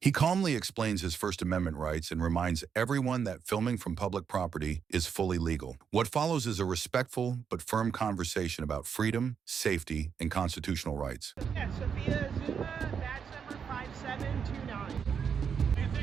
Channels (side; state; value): left; quieter; 6.9 dB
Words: calmly explains his First Amendment rights and reminds everyone that filming from public property is fully legal. What follows is a respectful but firm conversation about freedom, safety, and constitutional rights. Yeah, Sophia Zuma, badge number 5729. Take a